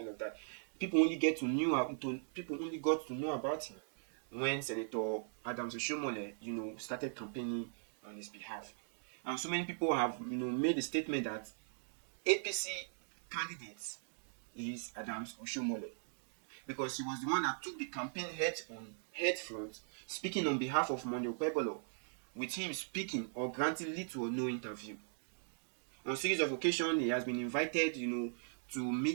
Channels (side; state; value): left; silent; digital silence